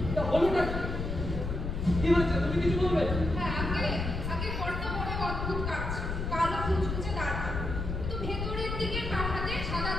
তা হলোটা কি? কি হয়েছে? তুমি কিছু বলবে? হ্যাঁ, আগে বড্ড বড় অদ্ভুত কাজ, কালো কুচকুচে দাঁড়, কিন্তু ভেতরের দিকে কাঠাতে সাদা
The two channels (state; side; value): noise; left; rumble, 3 dB below the sound